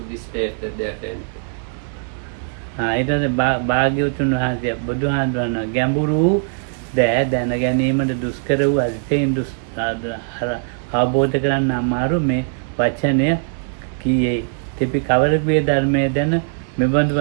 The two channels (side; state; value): left; silent; 66 dB below the other